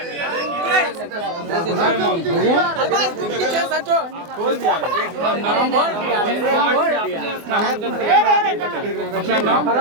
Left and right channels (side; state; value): left; late; 24 ms